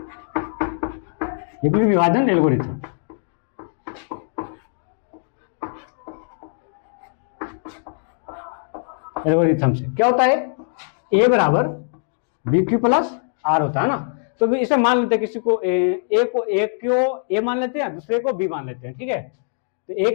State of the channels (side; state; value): right; silent; 64 dB below the other